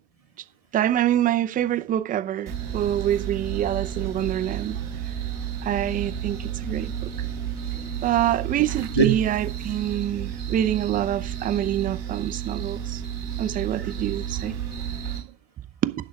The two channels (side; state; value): left; quieter; 10.0 dB